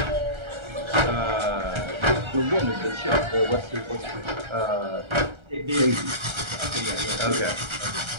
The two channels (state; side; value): late; left; 1.3 ms